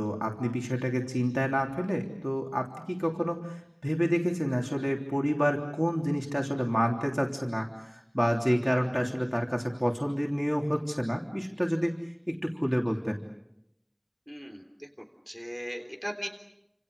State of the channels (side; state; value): both; identical; correlation 1.00